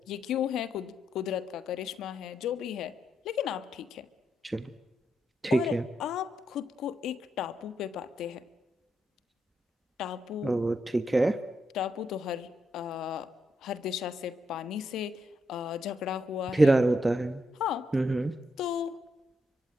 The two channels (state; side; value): normal; both; correlation 0.81